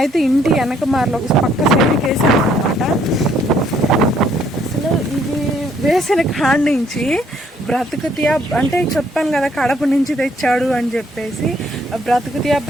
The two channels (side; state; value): both; normal; correlation 0.66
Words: ఇంటి వెనక ఒక పక్క సైడ్కి వేసాము అనమాట. అసలు ఇది వేసిన కాడి నుంచి బ్రతుకుతియా అంటే చెప్పాను కదా, కడప నుంచి తెచ్చాడు అని చెప్పేసి బ్రతుకుతియా